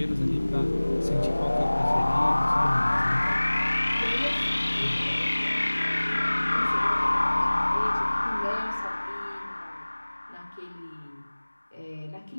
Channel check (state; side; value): inverted; both; correlation -1.00